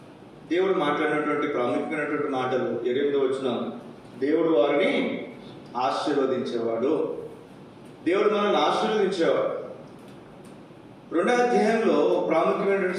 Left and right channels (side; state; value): both; identical; correlation 1.00